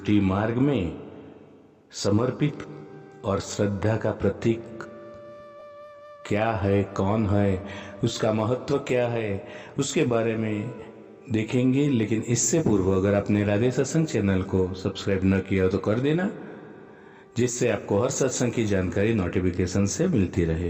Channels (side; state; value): both; identical; correlation 1.00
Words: मार्ग में समर्पित और श्रद्धा का प्रतीक क्या है, कौन है, उसका महत्व क्या है, उसके बारे में देखेंगे। लेकिन इससे पूर्व अगर आपने राधे सत्संग चैनल को सब्सक्राइब न किया तो कर देना, जिससे आपको हर सत्संग की जानकारी नोटिफिकेशन से मिलती